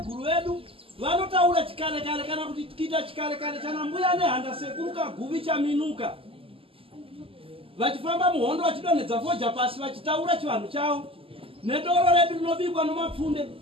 vedu vanotaura chikare kare kana kuti tikiita chikare kare chana mbuya nehanda sekuru kaguvi chaminuka vachifamba muhondo vachidonhedza foja pasi vachitaura chivanhu chavo nedoro redu rinobikwa nomapfunde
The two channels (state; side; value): late; left; 0.26 ms